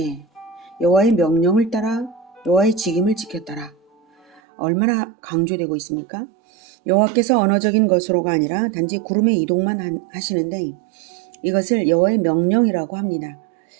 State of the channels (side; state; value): left; drops out; at 4.4 s